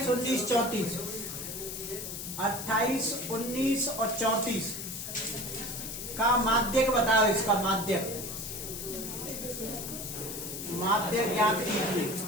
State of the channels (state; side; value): noise; left; hiss, 7 dB below the sound